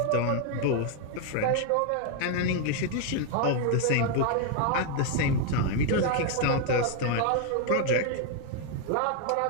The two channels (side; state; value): both; different; correlation 0.01